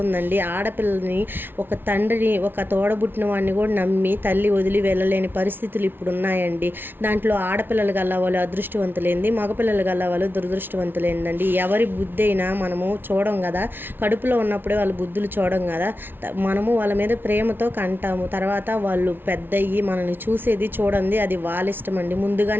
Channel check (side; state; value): left; late; 0.10 ms